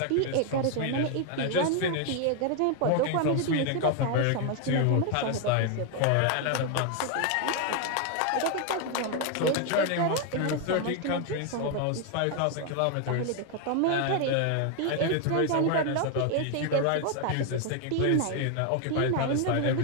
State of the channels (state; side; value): different; both; correlation 0.01